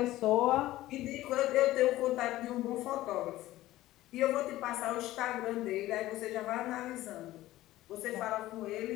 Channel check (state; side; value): quieter; right; 16.0 dB